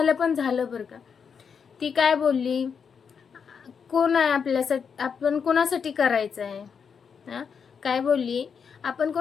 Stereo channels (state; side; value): quieter; right; 6.5 dB